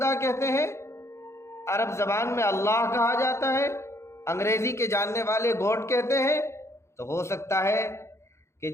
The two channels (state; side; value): late; right; 0.13 ms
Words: کہتے ہیں، عرب زبان میں اللہ کہا جاتا ہے، انگریزی کے جاننے والے گاڈ کہتے ہیں، تو ہو سکتا ہے کہ